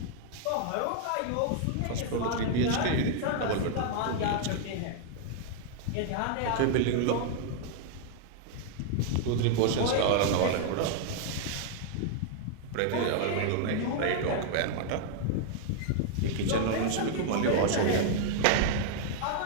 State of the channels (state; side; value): different; both; correlation 0.00